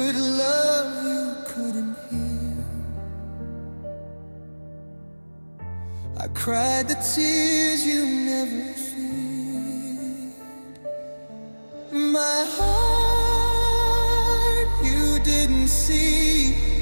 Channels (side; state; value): both; inverted; correlation -1.00